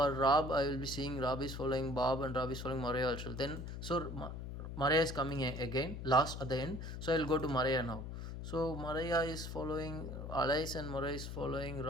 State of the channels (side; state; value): left; noise; hum, 7 dB below the sound